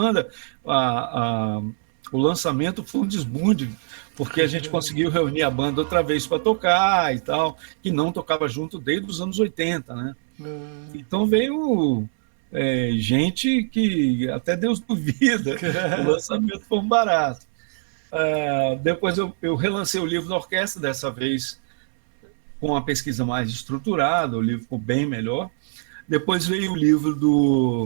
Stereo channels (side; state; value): left; silent; 61 dB below the other